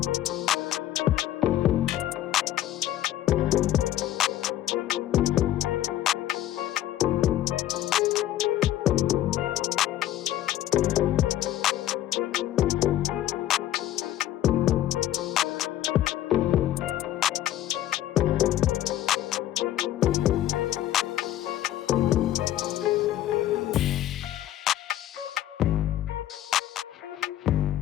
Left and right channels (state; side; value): quieter; right; 13.0 dB